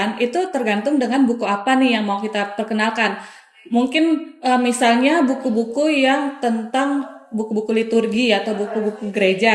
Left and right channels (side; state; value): both; identical; correlation 1.00